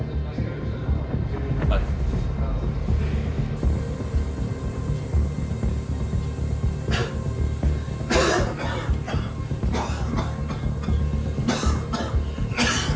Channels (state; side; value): identical; both; correlation 1.00